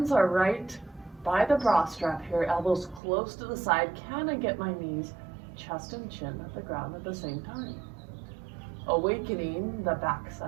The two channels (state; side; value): drops out; left; at 3.0 s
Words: are right by the bra strap here. Elbows close to the side. Can I get my knees, chest, and chin at the ground at the same time? Awakening the back